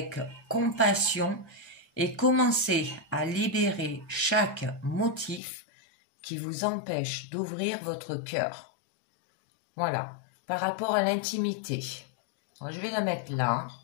compassion et commencer à libérer chaque motif qui vous empêche d'ouvrir votre cœur. Voilà, par rapport à l'intimité. Je vais la mettre là.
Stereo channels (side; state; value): right; drops out; at 5.4 s